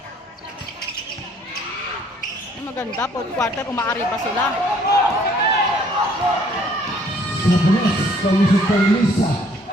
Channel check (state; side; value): normal; both; correlation 0.60